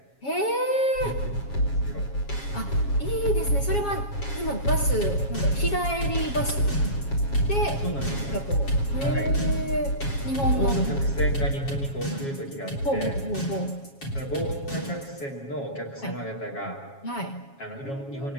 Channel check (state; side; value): late; right; 7.3 ms